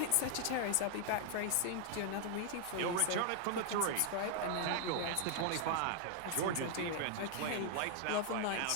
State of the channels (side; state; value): both; different; correlation 0.00